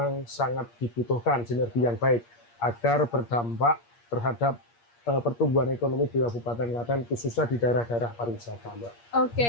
sangat dibutuhkan sinergi yang baik agar berdampak terhadap pertumbuhan ekonomi di Kabupaten Klaten, khususnya di daerah-daerah pariwisata, Mbak.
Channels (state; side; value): late; right; 8.5 ms